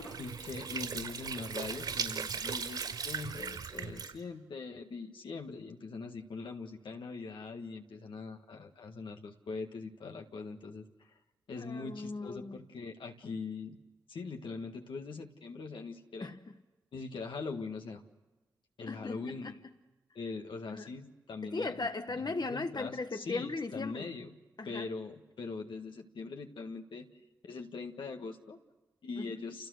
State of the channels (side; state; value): both; normal; correlation 0.54